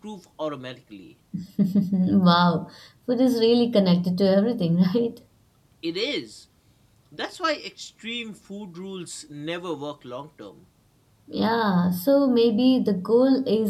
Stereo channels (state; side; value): identical; both; correlation 1.00